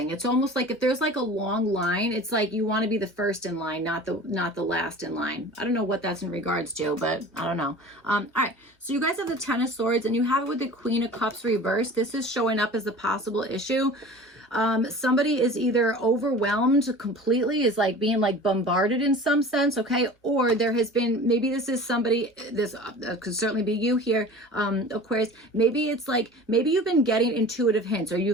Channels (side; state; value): both; normal; correlation 0.40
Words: It's almost like if there's like a long line, it's like you want to be the first in line, not the last in line. I don't know what that's in regards to, but I don't know. All right. So you guys have the Ten of Swords and you have it with the Queen of Cups reversed. This is showing up as a possible issue. Somebody is either overwhelmed completely, is like being like bombarded in some sense, okay? Or there has been, maybe this is somebody, this could certainly be you here, Aquarius. Maybe it's like, maybe you've been getting intuitive hints, or